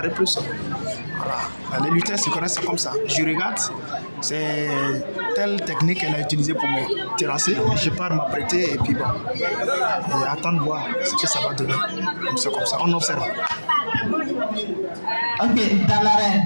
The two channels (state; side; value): inverted; both; correlation -1.00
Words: plus. Voilà. Les lutteurs se connaissent comme ça. Je regarde, c'est telle technique qu'elle a utilisée pour me terrasser. Je pars m'apprêter et puis bon, et attendre de voir ce que ça va donner. C'est comme ça, on observe. Ok, dans l'arène,